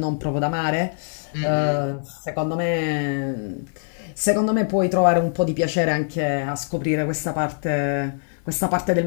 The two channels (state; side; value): silent; right; 59 dB below the other